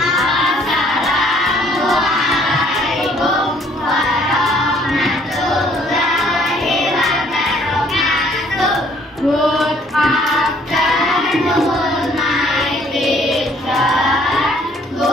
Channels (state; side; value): normal; both; correlation 0.61